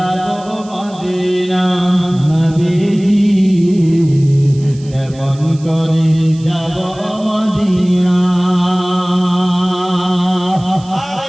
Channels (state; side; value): noise; right; hiss, 23 dB below the sound